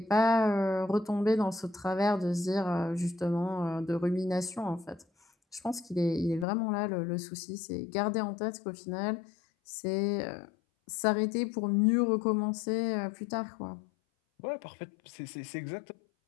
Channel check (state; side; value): drops out; right; at 6.5 s